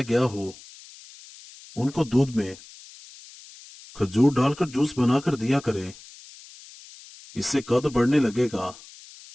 गया हो उनको दूध में खजूर डालकर जूस बनाकर दिया करें, इससे कद बढ़ने लगेगा।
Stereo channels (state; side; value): noise; left; hiss, 20 dB below the sound